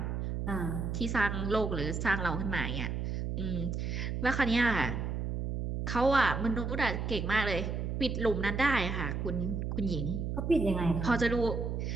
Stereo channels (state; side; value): noise; right; hum, 2 dB below the sound